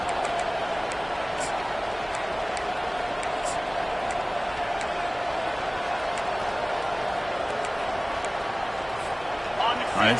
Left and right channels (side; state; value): right; noise; hum, 20 dB below the sound